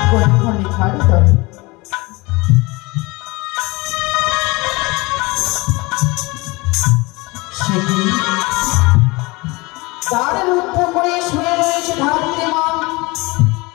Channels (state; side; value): quieter; right; 24.2 dB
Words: লেখার তরে তার রুদ্ধ করে শুয়ে রয়েছে ধাত্রী মা